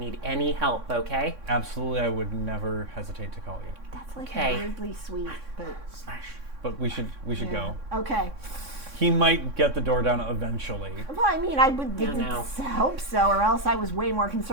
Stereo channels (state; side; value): late; left; 3.6 ms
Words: any help, okay?" Absolutely, I would never hesitate to call you. That's like Okay. weirdly sweet, but Smash. But we should yeah. go. Okay. He might get the door down eventually. Well, I mean, I would Yeah, no. hope so, or else I was way more